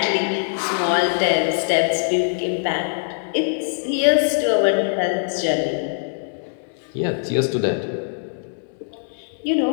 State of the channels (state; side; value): silent; right; digital silence